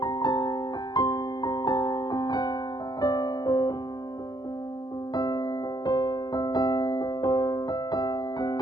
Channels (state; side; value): late; right; 0.20 ms